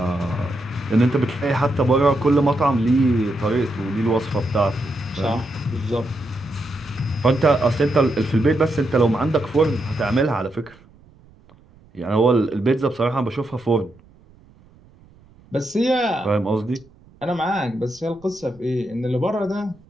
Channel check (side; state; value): right; noise; rumble, 27 dB below the sound